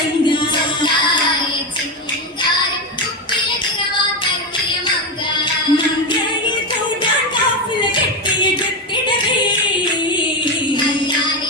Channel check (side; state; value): both; normal; correlation 0.13